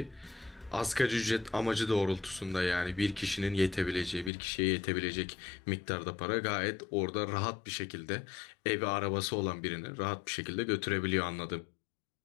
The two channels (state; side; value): drops out; right; at 4.3 s